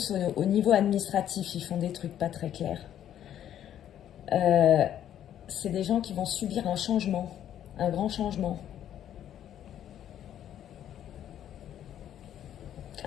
au niveau administratif, ils font des trucs pas très clairs, c'est des gens qui vont subir un changement, un grand changement.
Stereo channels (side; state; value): right; quieter; 10.7 dB